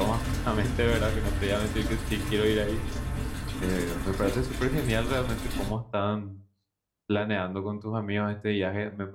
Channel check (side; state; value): both; identical; correlation 1.00